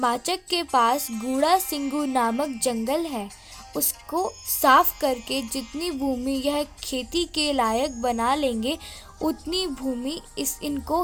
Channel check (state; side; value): identical; both; correlation 1.00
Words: के पास गूढ़ा सिंगू नामक जंगल है, उसको साफ करके जितनी भूमि यह खेती के लायक बना लेंगे उतनी भूमि इनको